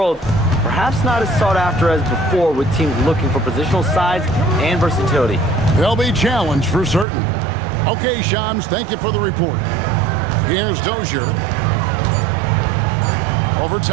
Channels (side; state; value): left; drops out; at 7.1 s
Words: perhaps not as sought after as before with teams looking for positional size and versatility. They'll be challenged for certain. Okay, Shams, thank you for the report. Here's Dozier. Over